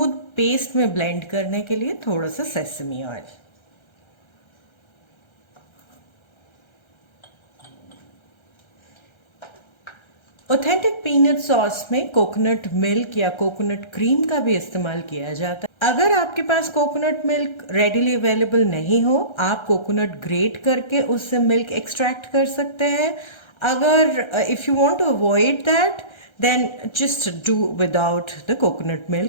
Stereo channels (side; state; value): right; late; 1.3 ms